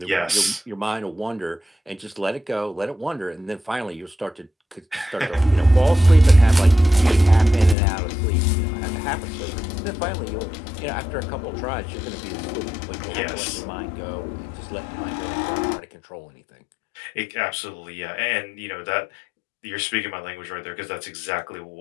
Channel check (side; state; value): right; drops out; at 7.8 s